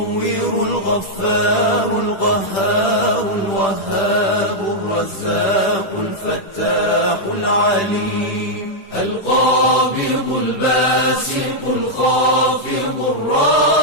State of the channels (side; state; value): right; late; 10 ms